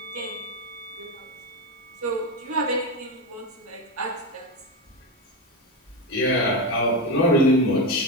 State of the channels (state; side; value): normal; both; correlation 0.15